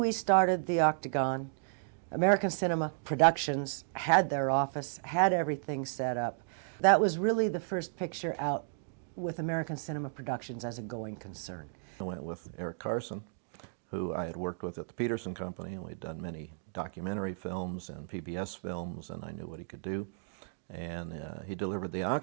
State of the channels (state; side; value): silent; left; digital silence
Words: started the Octagon, American Cinema Productions had their office, had everything set up. That was really the first picture out with American Cinema Productions as a going concern. I went with Eric Carson, who I had worked with at the Peterson Company, and we'd done many documentary films and PBS films, and I knew what he could do. And he delivered the